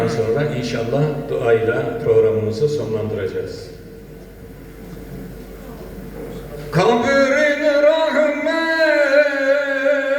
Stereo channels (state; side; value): identical; both; correlation 1.00